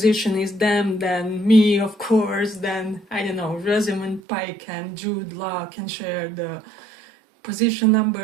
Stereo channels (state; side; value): drops out; left; at 4.2 s